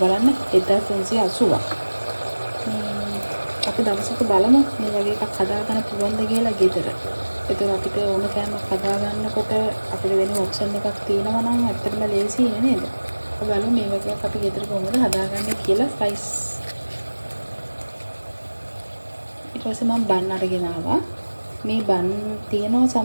බලන්න 1380ක්. අපි දවසක බලමු මේ වගේ එකක් හදාගන්න පුළුවන්ද කියලා ගෙදර. ඒතර අපිට ඕන කෑමක් හදාගන්නකොට අපිට වෙන ඔප්ෂන් එකක් තියෙනවා නම් ඇත්තටම ලේසි නේද? බලමු මේ වගේ එකක් අපි ගෙදර කොහොමද හදාගන්නේ කියලා ස්ලයිස්. ඊට පස්සේ මම බන් අරගෙන ආවා. මේ බන් තියෙනවා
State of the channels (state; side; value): inverted; both; correlation -1.00